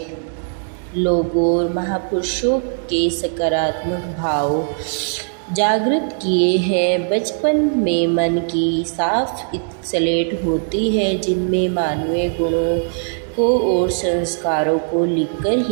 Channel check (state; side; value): silent; left; digital silence